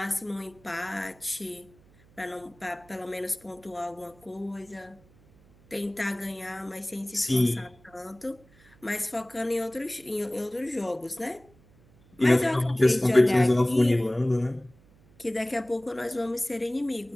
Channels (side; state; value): right; noise; hum, 28 dB below the sound